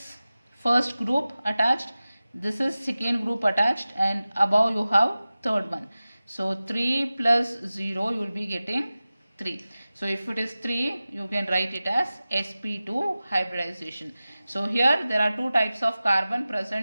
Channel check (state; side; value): inverted; both; correlation -0.96